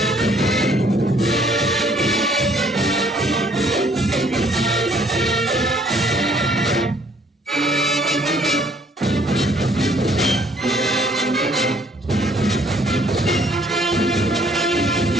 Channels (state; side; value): normal; both; correlation 0.62